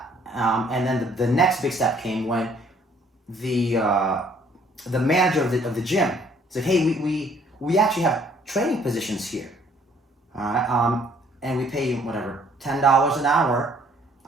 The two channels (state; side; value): normal; both; correlation 0.62